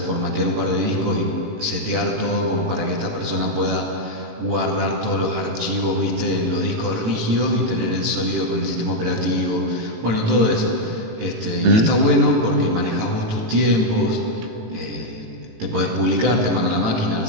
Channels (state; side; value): late; left; 18 ms